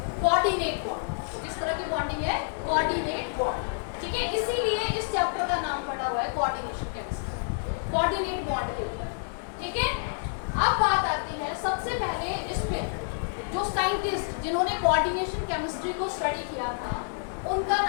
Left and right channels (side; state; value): right; silent; digital silence